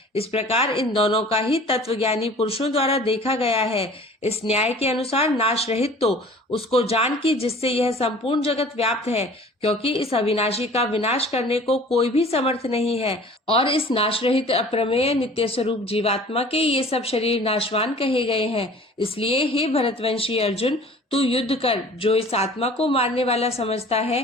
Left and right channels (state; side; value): normal; both; correlation 0.47